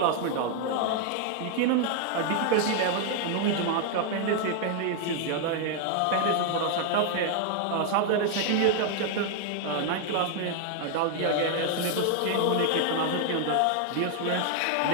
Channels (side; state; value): both; different; correlation 0.00